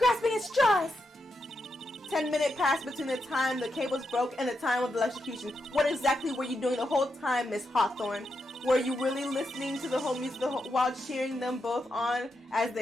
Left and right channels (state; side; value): normal; both; correlation 0.84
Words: at straws. 10-minute passed between the time the cables broke and the time of the electrocution. What exactly were you doing the whole time, Miss Hawthorne? Were you really listening to the whole music while cheering them both on as